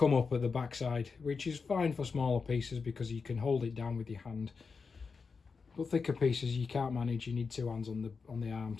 up at the backside, which is fine for smaller pieces because you can hold it down with your hand. But thicker pieces you can't manage, you need two hands on the arm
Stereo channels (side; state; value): right; quieter; 5.0 dB